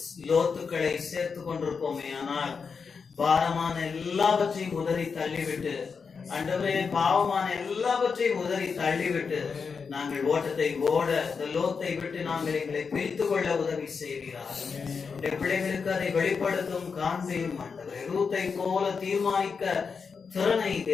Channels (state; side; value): quieter; right; 5.5 dB